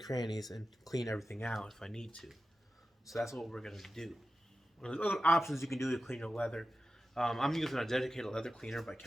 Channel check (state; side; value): normal; both; correlation 0.93